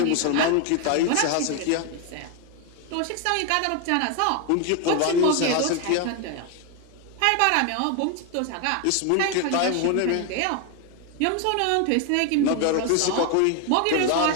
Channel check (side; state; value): both; different; correlation 0.01